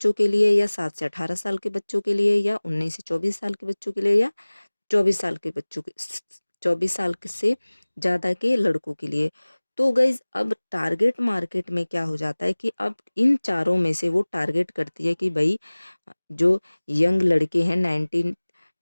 के लिए या 7 से 18 साल के बच्चों के लिए या 19 से 24 साल के बच्चों के लिए या 24 साल के बच्चों के 24 साल से ज़्यादा के लड़कों के लिए। तो गाइज अब टारगेट मार्केट में क्या हो जाता है कि अब इन चारों में से वो टारगेट करती है कि भाई जो यंग लड़के हैं 19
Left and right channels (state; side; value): inverted; both; correlation -1.00